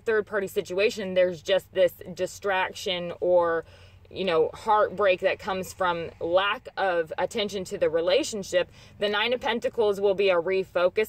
party situation, there's just this distraction or, you know, heartbreak that comes from lack of attention to the relationship, the Nine of Pentacles will be a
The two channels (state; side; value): identical; both; correlation 1.00